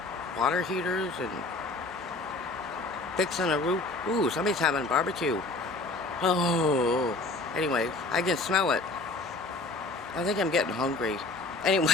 water heaters and fixing a roof? Ooh, somebody's having barbecue. Oh, anyway, I can smell it. I think I'm getting hungry.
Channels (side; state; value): right; quieter; 3.1 dB